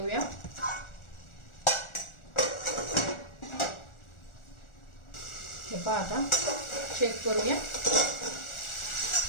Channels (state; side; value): late; right; 1.4 ms